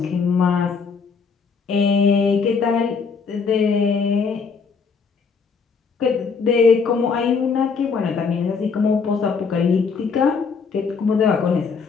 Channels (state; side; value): quieter; right; 5.4 dB